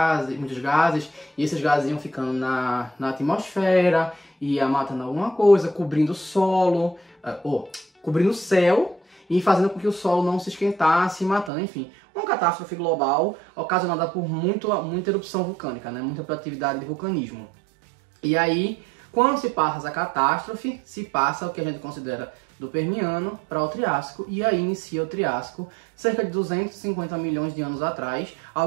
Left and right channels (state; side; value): drops out; left; at 11.5 s